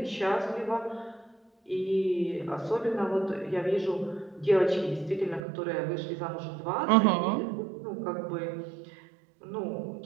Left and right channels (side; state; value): left; drops out; at 5.4 s